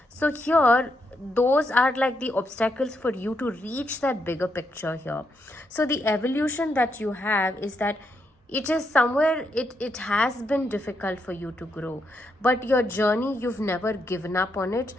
So here, those are like the obstacles for you to reach that bigger picture here. So the evolution that you have is that it is somewhere, it has been difficult for you to grow, but your journey, you've never given up on it.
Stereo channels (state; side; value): normal; both; correlation 0.80